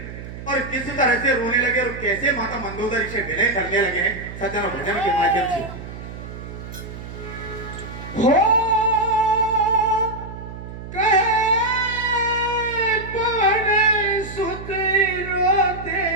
और किस तरह से रोने लगे और कैसे माता मंदोदरी से विनय करने लगे हैं सज्जन भजन के माध्यम से। हो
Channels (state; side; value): noise; right; hum, 11 dB below the sound